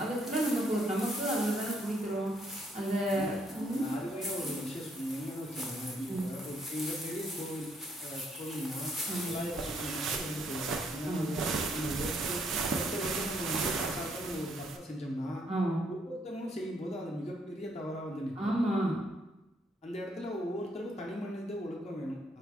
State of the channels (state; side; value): normal; both; correlation 0.71